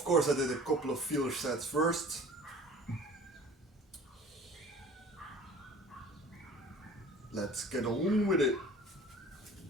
course I did a couple of feeler sets first. Let's get on with it.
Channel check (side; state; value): both; normal; correlation 0.46